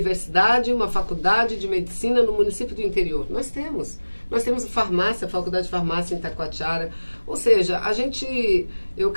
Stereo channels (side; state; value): both; inverted; correlation -1.00